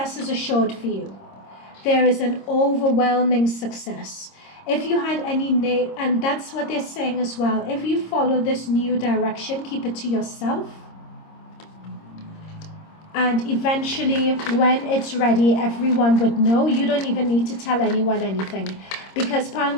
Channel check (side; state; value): right; late; 26 ms